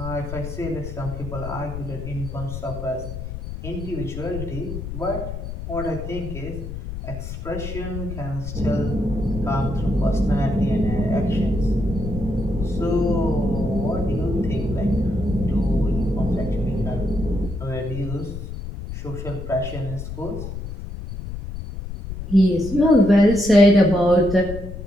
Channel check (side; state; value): left; noise; rumble, 8 dB below the sound